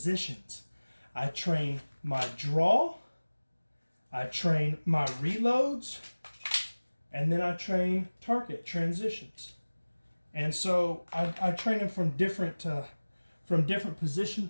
I train my draw, I train my reloads, and then I train target transitions. And so I train them from different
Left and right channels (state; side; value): inverted; both; correlation -1.00